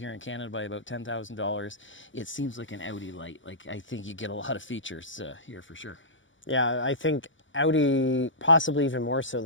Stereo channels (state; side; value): late; right; 0.56 ms